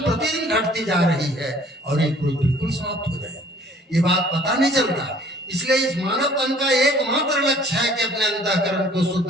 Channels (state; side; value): normal; both; correlation 0.54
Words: घटती जा रही है और एक रोज बिल्कुल समाप्त हो जाएगी। ये बात पता नहीं चलता। इसलिए इस मानव तन का एकमात्र लक्ष्य है कि अपने अंतःकरण को